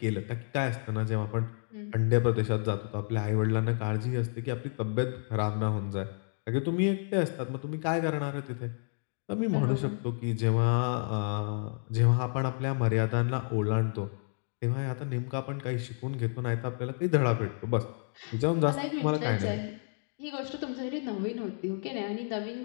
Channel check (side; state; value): right; silent; 57 dB below the other